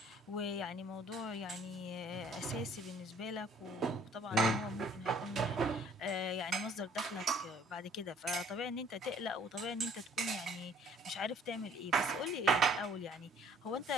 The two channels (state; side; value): normal; both; correlation 0.58